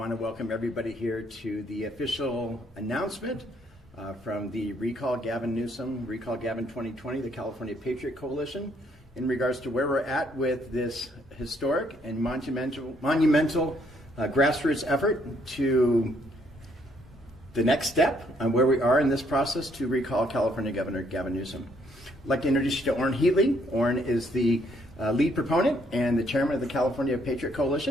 to welcome everybody here to the official announcement from the Recall Gavin Newsom, Recall Gavin 2020, the California Patriot Coalition, in regards to where we're at with this historic and monumental grassroots effort to the next step on where we are in this process to recall California Governor Gavin Newsom. I'd like to introduce you to Orrin Heatley. Orrin is the lead proponent and the chairman of the California Patriot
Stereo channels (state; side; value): normal; both; correlation 0.69